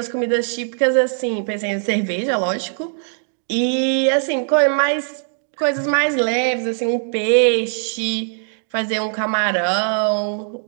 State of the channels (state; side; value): silent; left; digital silence